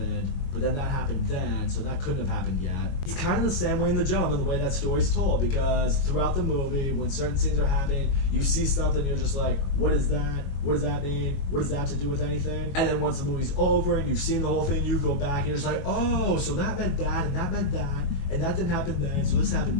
but then that happened then, so that couldn't have happened yet. It's kind of the same way in The Gentleman, the way that story's told, because throughout the movie, when certain scenes are happening, you see something, you're just like, what is that? What does that mean? What does that have to do with anything? And then once the movie's over and you've seen the whole thing, you go back and you're just like, oh, so that meant that, and that meant that, and that didn't happen then, so this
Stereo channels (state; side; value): late; right; 22 ms